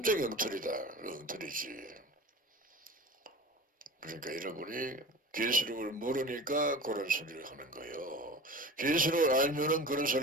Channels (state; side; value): normal; both; correlation 0.35